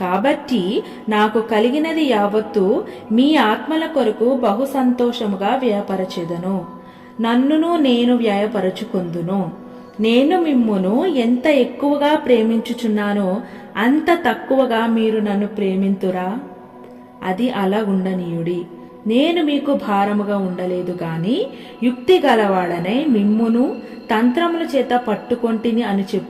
కాబట్టి నాకు కలిగినది యావత్తు మీ ఆత్మల కొరకు బహు సంతోషముగా వ్యయపరచెదను. నన్నును నేను వ్యయపరచుకొందును. నేను మిమ్మును ఎంత ఎక్కువగా ప్రేమించుచున్నానో అంత తక్కువగా మీరు నన్ను ప్రేమింతురా? అది అలా ఉండనీయుడి. నేను మీకు భారముగా ఉండలేదు గాని యుక్తి గలవాడనై మిమ్మును తంత్రముల చేత పట్టుకొంటిని అని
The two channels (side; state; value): both; identical; correlation 1.00